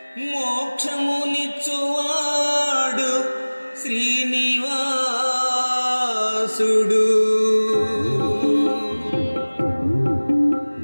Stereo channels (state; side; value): inverted; both; correlation -1.00